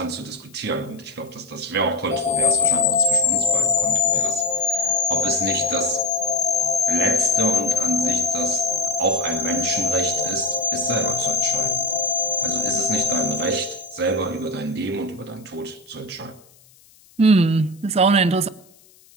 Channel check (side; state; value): left; noise; hiss, 28 dB below the sound